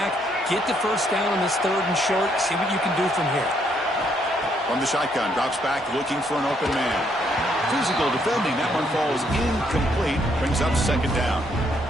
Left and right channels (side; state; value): both; normal; correlation 0.71